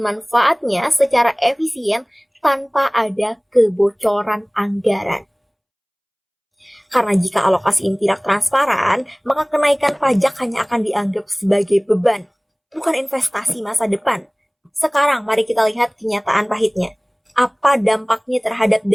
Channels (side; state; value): both; identical; correlation 1.00